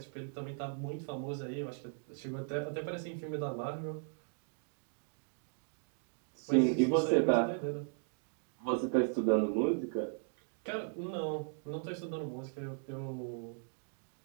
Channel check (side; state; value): left; silent; 53 dB below the other